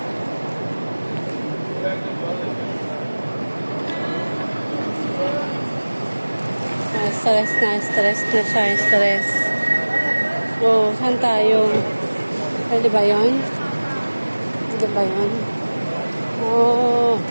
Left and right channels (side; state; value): both; inverted; correlation -1.00